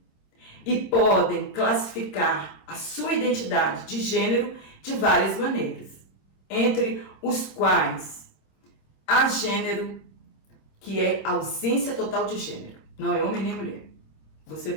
e podem classificar a sua identidade de gênero de várias maneiras, entre os quais há gênero, que é ausência total de gênero, não é homem nem mulher. Você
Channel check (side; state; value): right; late; 26 ms